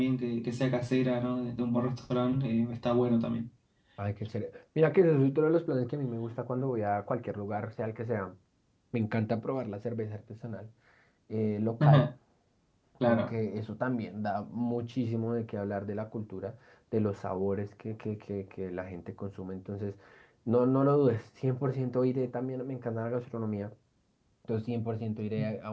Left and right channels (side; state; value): both; identical; correlation 1.00